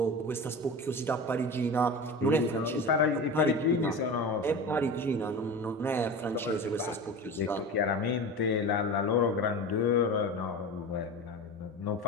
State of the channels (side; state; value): both; normal; correlation 0.30